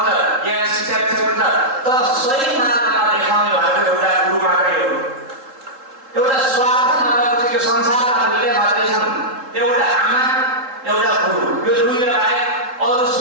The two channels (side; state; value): left; late; 3.7 ms